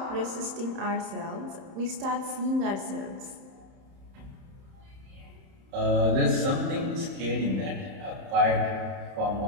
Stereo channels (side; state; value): left; late; 31 ms